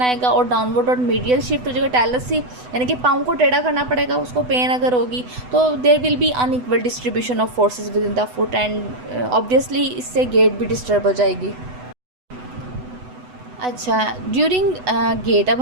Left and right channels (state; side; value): late; left; 8.0 ms